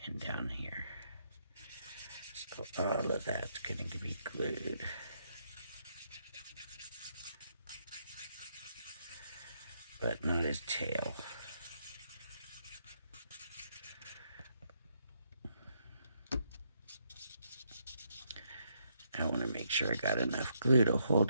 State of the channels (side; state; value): both; inverted; correlation -0.75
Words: and down here. So all of that's gonna be glued. But not his tail. I want to make sure I got enough glue to